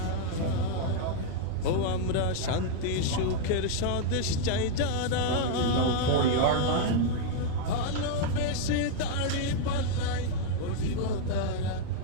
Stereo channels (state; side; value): different; both; correlation 0.00